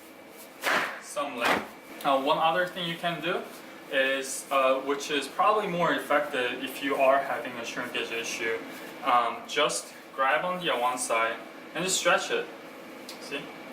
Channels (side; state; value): both; identical; correlation 1.00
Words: some length. One other thing you can do is, which is probably more effective if you are having a shrinkage issue, just grab on the one side and just stretch it. See?